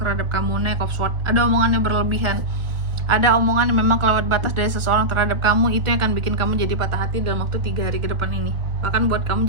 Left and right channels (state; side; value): late; left; 1.0 ms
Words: kamu. Knight of Swords, ada omongan yang berlebihan, ada omongan yang memang kelewat batas dari seseorang terhadap kamu, itu yang akan bikin kamu jadi patah hati dalam waktu 3 hari ke depan ini, bahkan buat kamu